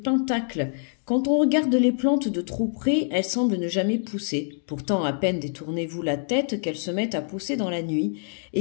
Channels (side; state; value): right; silent; digital silence